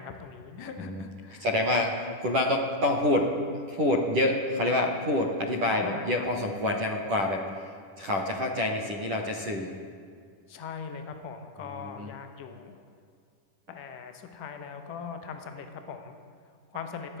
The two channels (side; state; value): left; late; 10 ms